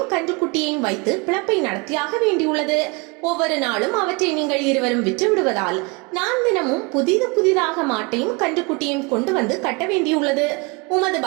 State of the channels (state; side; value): quieter; left; 28.5 dB